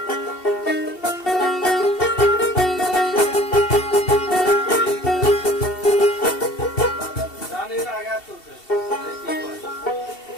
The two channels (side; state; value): right; late; 2.7 ms